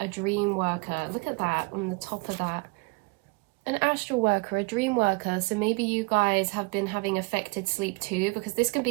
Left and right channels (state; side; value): quieter; left; 28.9 dB